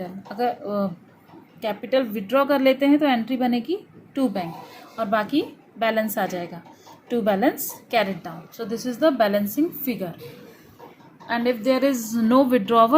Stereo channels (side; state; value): both; identical; correlation 1.00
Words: अगर capital withdraw कर लेते हैं तो entry बनेगी to bank और बाकी balance आ जाएगा to balance carried down. So this is the balancing figure. And if there is no